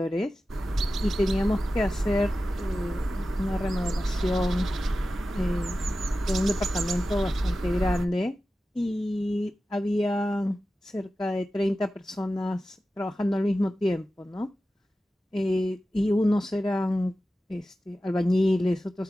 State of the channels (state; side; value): normal; both; correlation 0.94